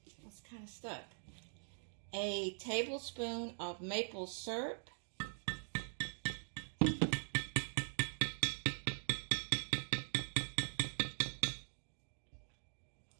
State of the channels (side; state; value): left; silent; digital silence